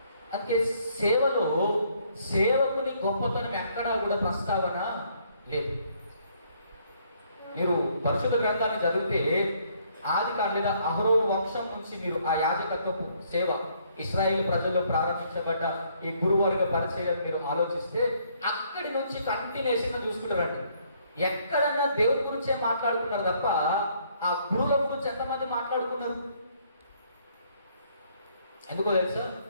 అందుకే సేవలో సేవకుని గొప్పతనం ఎక్కడా కూడా ప్రస్తావన లేదు. మీరు పరిశుద్ధ గ్రంథాన్ని చదివితే ఆదికాండం లేదా అహరోను వంశం నుంచి మీరు ఆ యాజకత్వపు సేవ ఇశ్రాయేలు ప్రజల్లో ప్రారంభించబడ్డ ఈ గురువర్గ పరిచయం మీరు ఆలోచిస్తే అక్కడి నుంచి కంటిన్యూషన్గా చూసుకుంటారండి. ఎక్కడన్నా దేవుడి గురించే మాట్లాడుకున్నారు తప్ప ఆ గురువుల గురించి ఎంతమంది మాట్లాడుకున్నారు? ఎందుకో తెలుసా?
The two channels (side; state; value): both; inverted; correlation -0.67